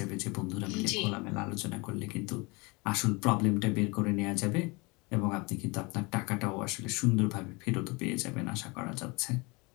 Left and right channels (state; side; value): quieter; right; 27.0 dB